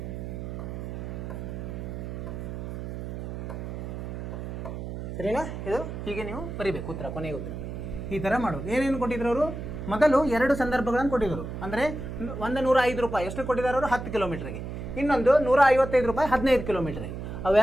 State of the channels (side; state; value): right; noise; hum, 7 dB below the sound